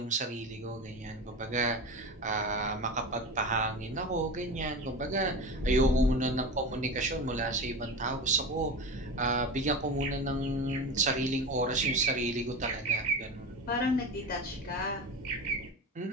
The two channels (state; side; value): normal; both; correlation 0.26